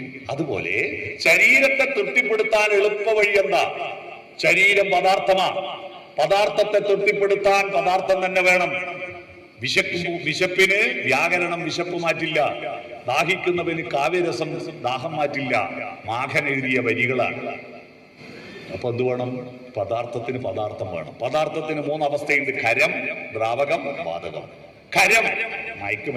അതുപോലെ ശരീരത്തെ തൃപ്തിപ്പെടുത്താൻ എളുപ്പ വഴി എന്താ? ശരീരം പദാർത്ഥമാണ്. പദാർത്ഥത്തെ തൃപ്തിപ്പെടുത്താൻ പദാർത്ഥം തന്നെ വേണം. വിശപ്പിന് വ്യാകരണം വിശപ്പ് മാറ്റില്ല. ദാഹിക്കുന്നവന് കാവ്യരസം ദാഹം മാറ്റില്ല. മാഘൻ എഴുതിയ വരികളാണ്. അപ്പൊ എന്ത് വേണം? പദാർത്ഥത്തിന് പദാർത്ഥം വേണം. പദാർത്ഥത്തിന് 3 അവസ്ഥയുണ്ട്: ഖരം, ദ്രാവകം, വാതകം. ഖരം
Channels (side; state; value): both; identical; correlation 1.00